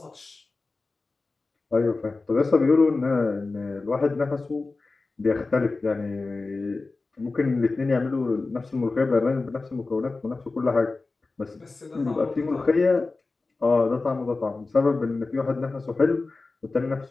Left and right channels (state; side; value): quieter; right; 3.6 dB